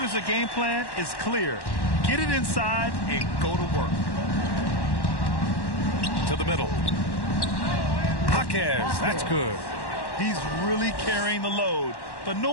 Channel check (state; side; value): late; right; 1.1 ms